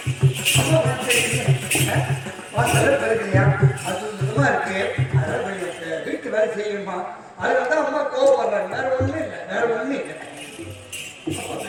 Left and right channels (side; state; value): both; identical; correlation 1.00